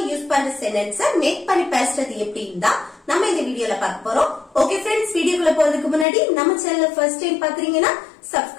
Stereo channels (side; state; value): right; drops out; at 6.1 s